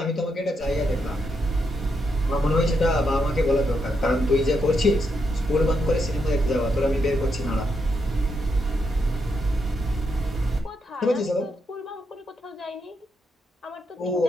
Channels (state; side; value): normal; both; correlation 0.81